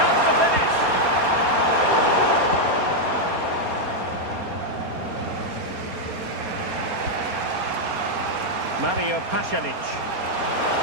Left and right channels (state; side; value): late; left; 4.3 ms